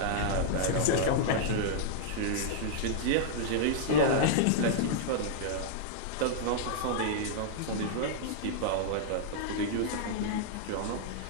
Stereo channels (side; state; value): both; different; correlation -0.01